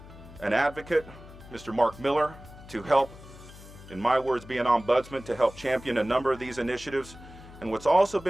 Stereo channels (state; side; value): noise; left; hum, 18 dB below the sound